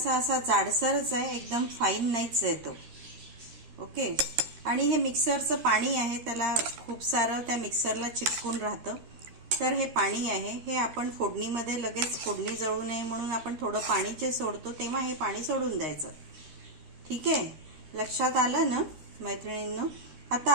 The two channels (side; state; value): left; late; 13 ms